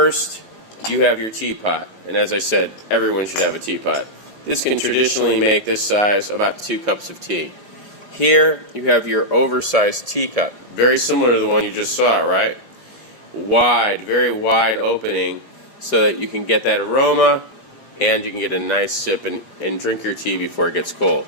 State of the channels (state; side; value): late; right; 4.9 ms